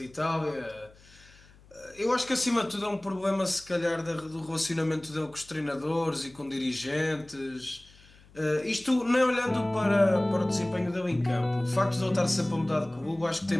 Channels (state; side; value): noise; left; hum, 26 dB below the sound